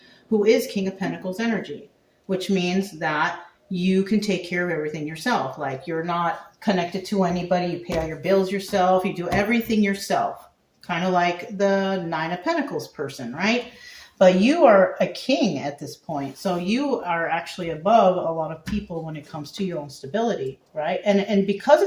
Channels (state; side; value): identical; both; correlation 1.00